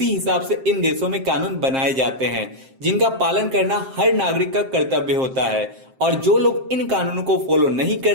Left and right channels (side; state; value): left; late; 7.6 ms